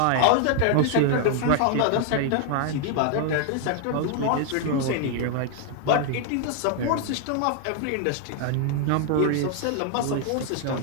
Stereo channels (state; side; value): different; both; correlation 0.00